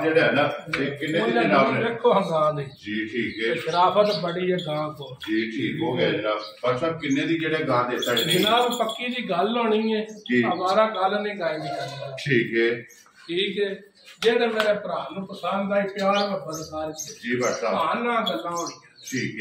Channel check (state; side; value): identical; both; correlation 1.00